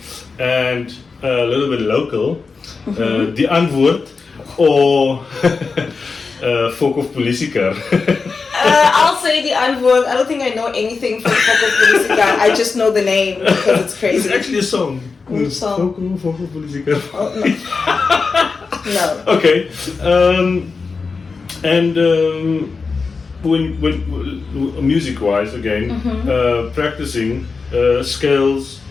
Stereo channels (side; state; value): right; quieter; 4.6 dB